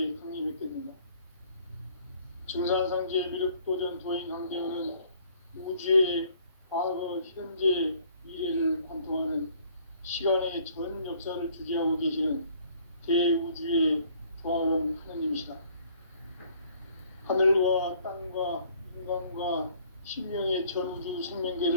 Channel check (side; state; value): both; inverted; correlation -0.59